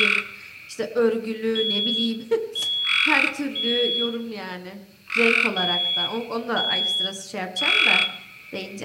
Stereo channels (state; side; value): identical; both; correlation 1.00